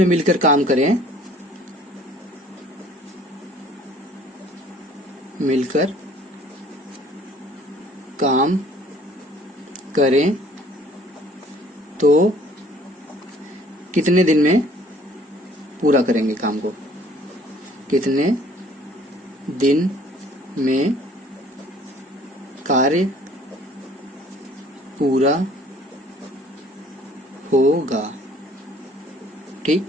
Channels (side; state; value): both; normal; correlation 0.56